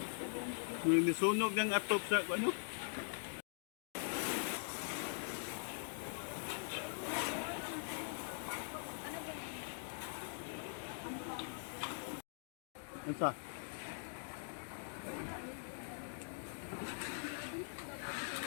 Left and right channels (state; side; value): silent; right; digital silence